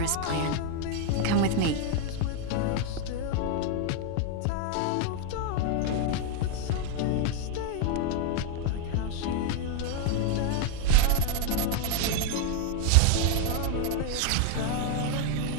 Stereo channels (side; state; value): both; different; correlation 0.01